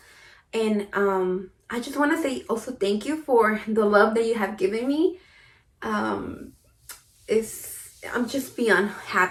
And I just want to say also thank you for the love that you have given me. I'm just beyond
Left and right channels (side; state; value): both; identical; correlation 1.00